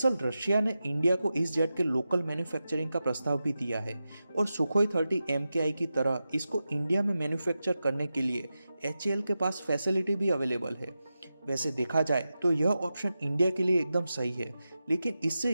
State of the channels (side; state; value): both; inverted; correlation -0.91